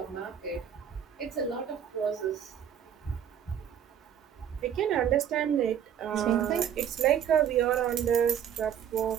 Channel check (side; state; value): left; quieter; 9.0 dB